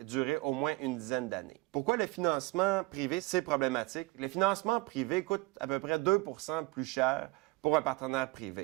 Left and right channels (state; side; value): quieter; left; 22.5 dB